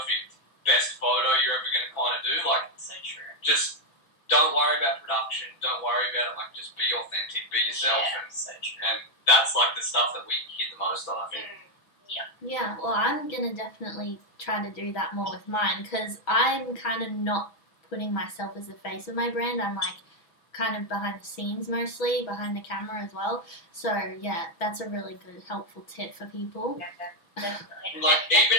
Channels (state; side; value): late; right; 6.1 ms